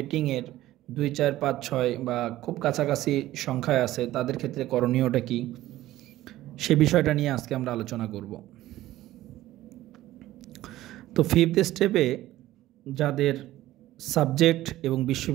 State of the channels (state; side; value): quieter; left; 15.3 dB